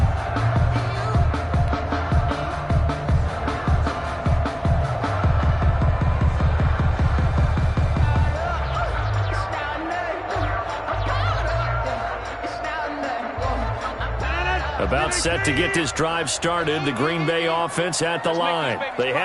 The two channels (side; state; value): both; identical; correlation 1.00